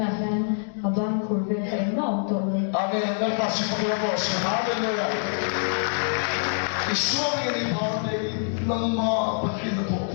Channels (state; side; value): silent; right; digital silence